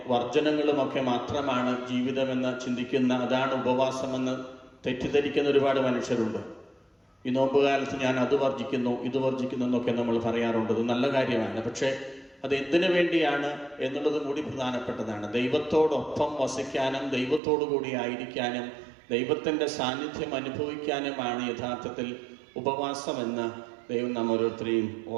വർജനങ്ങളുമൊക്കെ മാത്രമാണ് ജീവിതമെന്ന് ചിന്തിക്കുന്ന, അതാണ് ഉപവാസമെന്ന് തെറ്റിദ്ധരിക്കുന്ന ഒരുപാട് മനുഷ്യരുണ്ട്. ഈ നോമ്പുകാലത്ത് ഞാൻ അത് വർജിക്കുന്നു ഇത് വർജിക്കുന്നു എന്നൊക്കെ നമ്മൾ പറയാറുണ്ട്. അത് നല്ല കാര്യമാണ്. പക്ഷേ അത് എന്തിനു വേണ്ടിയാണ് എന്നുള്ളതും കൂടി പ്രധാനപ്പെട്ടതാണ്. ദൈവത്തോടൊപ്പം വസിക്കാനും ദൈവത്തോടു കൂടി ആയിരിക്കാനും ദൈവത്തിൻ്റെ സാന്നിധ്യം അനുഭവിക്കാനുമാണ് യഥാർത്ഥത്തിൽ ഉപവാസമെന്ന് ദൈവം നാം ഓരോരുത്തരെയും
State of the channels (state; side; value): drops out; left; at 17.4 s